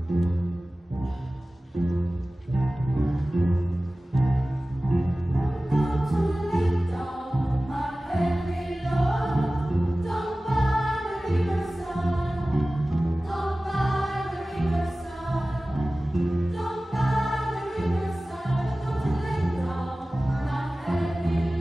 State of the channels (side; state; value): both; normal; correlation 0.97